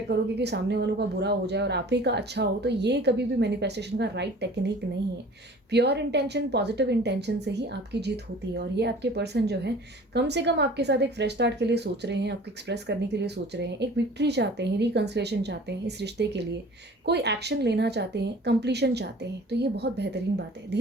करोगे कि सामने वालों का बुरा हो जाए और आप ही का अच्छा हो, तो ये कभी भी मैनिफेस्टेशन का राइट टेक्निक नहीं है। प्योर इंटेंशन, पॉजिटिव इंटेंशन से ही आपकी जीत होती है। और ये आपके पर्सन जो है कम से कम आपके साथ एक फ्रेश स्टार्ट के लिए सोच रहे हैं, आपको एक्सप्रेस करने के लिए सोच रहे हैं, एक विक्ट्री चाहते हैं, रिकंसिलेशन चाहते हैं इस रिश्ते के लिए, कोई एक्शन लेना चाहते हैं, कंप्लीशन चाहते हैं। तो ये बहुत बेहतरीन बात है।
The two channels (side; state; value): both; normal; correlation 0.46